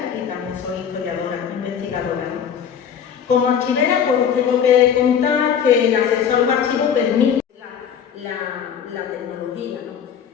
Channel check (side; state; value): right; quieter; 8.0 dB